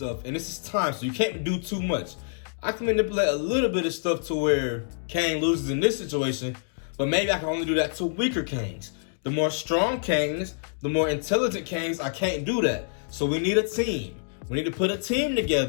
and this is time, so you can't do too much. I can manipulate a little bit of stuff to where Kang loses in this situation, but maybe I can only do that to weaker Kangs. The more strong Kangs, the more intelligent Kangs, I can't do that. So we need a team. We need to put a team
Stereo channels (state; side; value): silent; right; digital silence